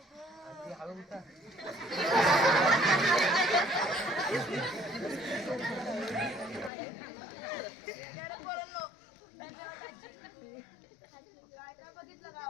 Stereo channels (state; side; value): drops out; right; at 6.7 s